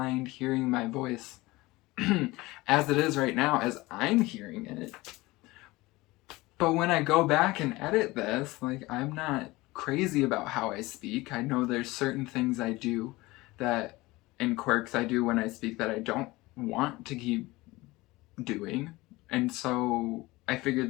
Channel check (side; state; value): right; quieter; 20.7 dB